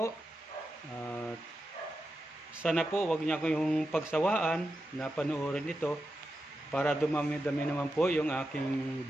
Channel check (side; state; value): both; normal; correlation 0.89